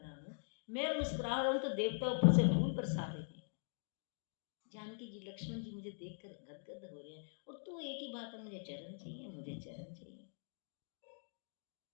हूँ, मैं मुस्कुरा रहा हूँ तो देवता ऊपर से फूल बरसा रहे हैं। जानकी जी लक्ष्मण जी मुझे देखकर गदगद हो रहे हैं, और तू एक ही बात है, मुझे चरण चाहिए, मुझे चरण चाहिए।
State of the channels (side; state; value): right; silent; digital silence